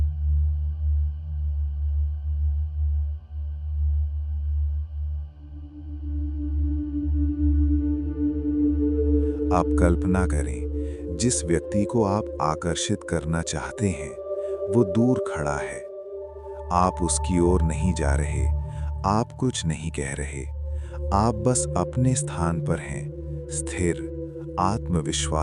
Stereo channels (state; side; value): identical; both; correlation 1.00